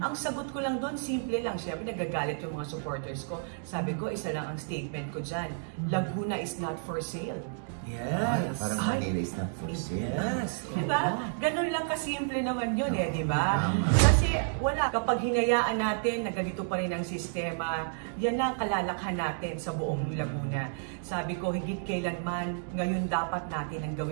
sagot ko lang doon, simple lang. Siyempre, nagagalit yung mga supporters ko. Sabi ko, isa lang ang statement ko dyan. Laguna is not for sale. Yes. Parang Manila is not for sale. Yes. Diba? Ganun lang kasimple naman yun diba? Kasi wala. Kapag hinayaan natin na ganito pa rin ang sistema, yan ang kalalakhan natin sa buong Laguna. Sabi ko, higit kailanman, ngayon dapat natin ang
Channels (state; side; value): silent; left; digital silence